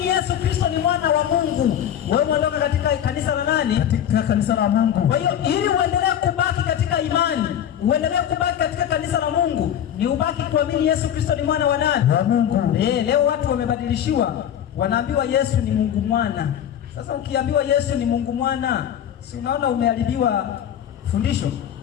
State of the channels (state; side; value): quieter; right; 10.0 dB